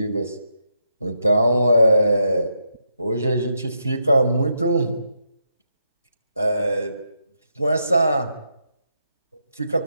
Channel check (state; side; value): inverted; both; correlation -0.82